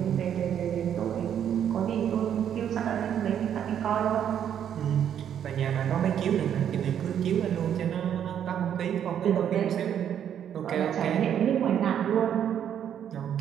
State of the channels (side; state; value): left; quieter; 9.3 dB